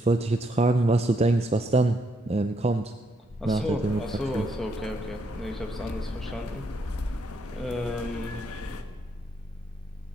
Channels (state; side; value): normal; both; correlation 0.75